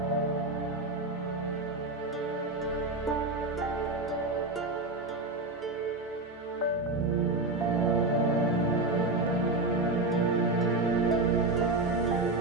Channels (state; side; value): quieter; left; 3.0 dB